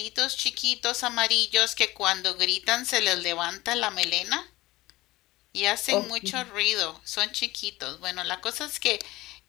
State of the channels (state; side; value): quieter; right; 18.9 dB